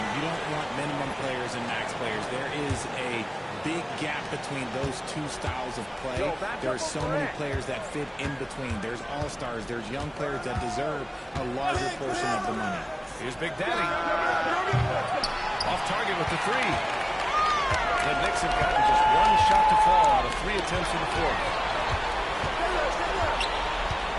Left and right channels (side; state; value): both; identical; correlation 1.00